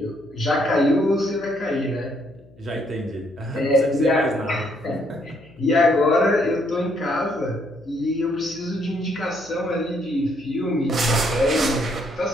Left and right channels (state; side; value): noise; left; hum, 25 dB below the sound